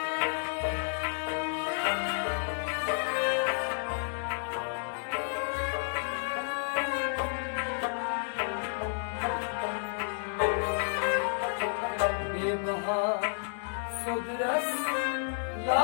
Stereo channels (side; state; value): right; silent; digital silence